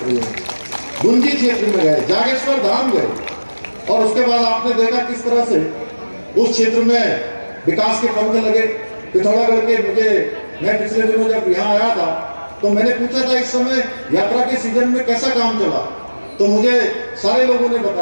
हैं। गुंजी क्षेत्र में गए, जागेश्वर धाम गए, और उसके बाद आपने देखा किस तरह से उस क्षेत्र में विकास के पंख लगे। पिथौरागढ़ के मैं पिछले दिनों जब यहाँ आया था तो मैंने पूछा था इस समय यात्रा के सीजन में कैसा काम चला, तो मुझे सारे लोगों ने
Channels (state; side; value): inverted; both; correlation -1.00